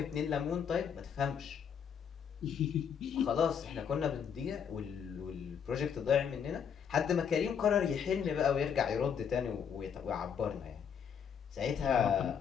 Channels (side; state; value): right; quieter; 7.5 dB